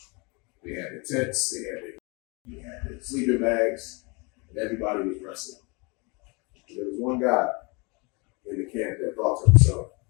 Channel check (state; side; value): quieter; right; 29.5 dB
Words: They had their tents, they had their sleeping bags, and everybody was resting. There was one guy in the camp that thought to himself,